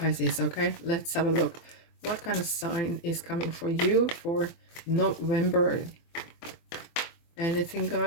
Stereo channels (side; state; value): right; late; 24 ms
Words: Okay, let's have a look. What kind of sign is coming for you for November? Anything,